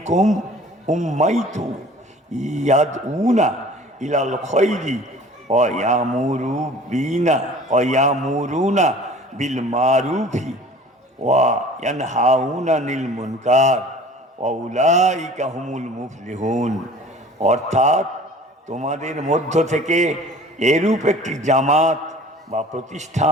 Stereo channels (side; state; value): both; normal; correlation 0.46